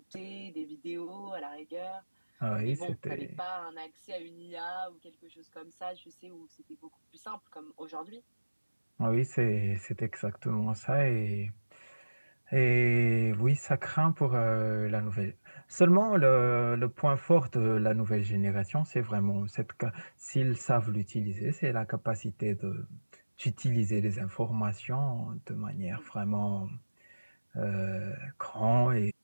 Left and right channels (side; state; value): both; inverted; correlation -1.00